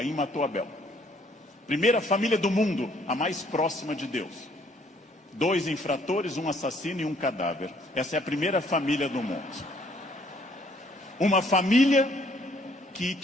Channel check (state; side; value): normal; both; correlation 0.63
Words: matou Abel. Primeira família do mundo, a mais próxima de Deus. 2 infratores, um assassino e um cadáver. Essa é a primeira família do mundo. Uma família que